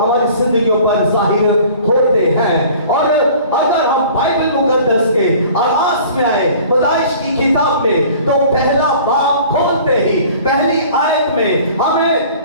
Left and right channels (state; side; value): inverted; both; correlation -0.47